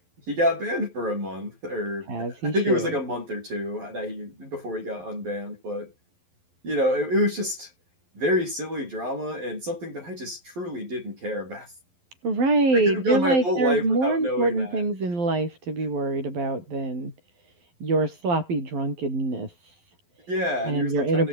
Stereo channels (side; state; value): left; late; 11 ms